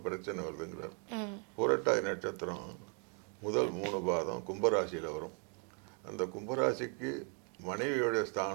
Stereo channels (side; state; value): left; quieter; 39.2 dB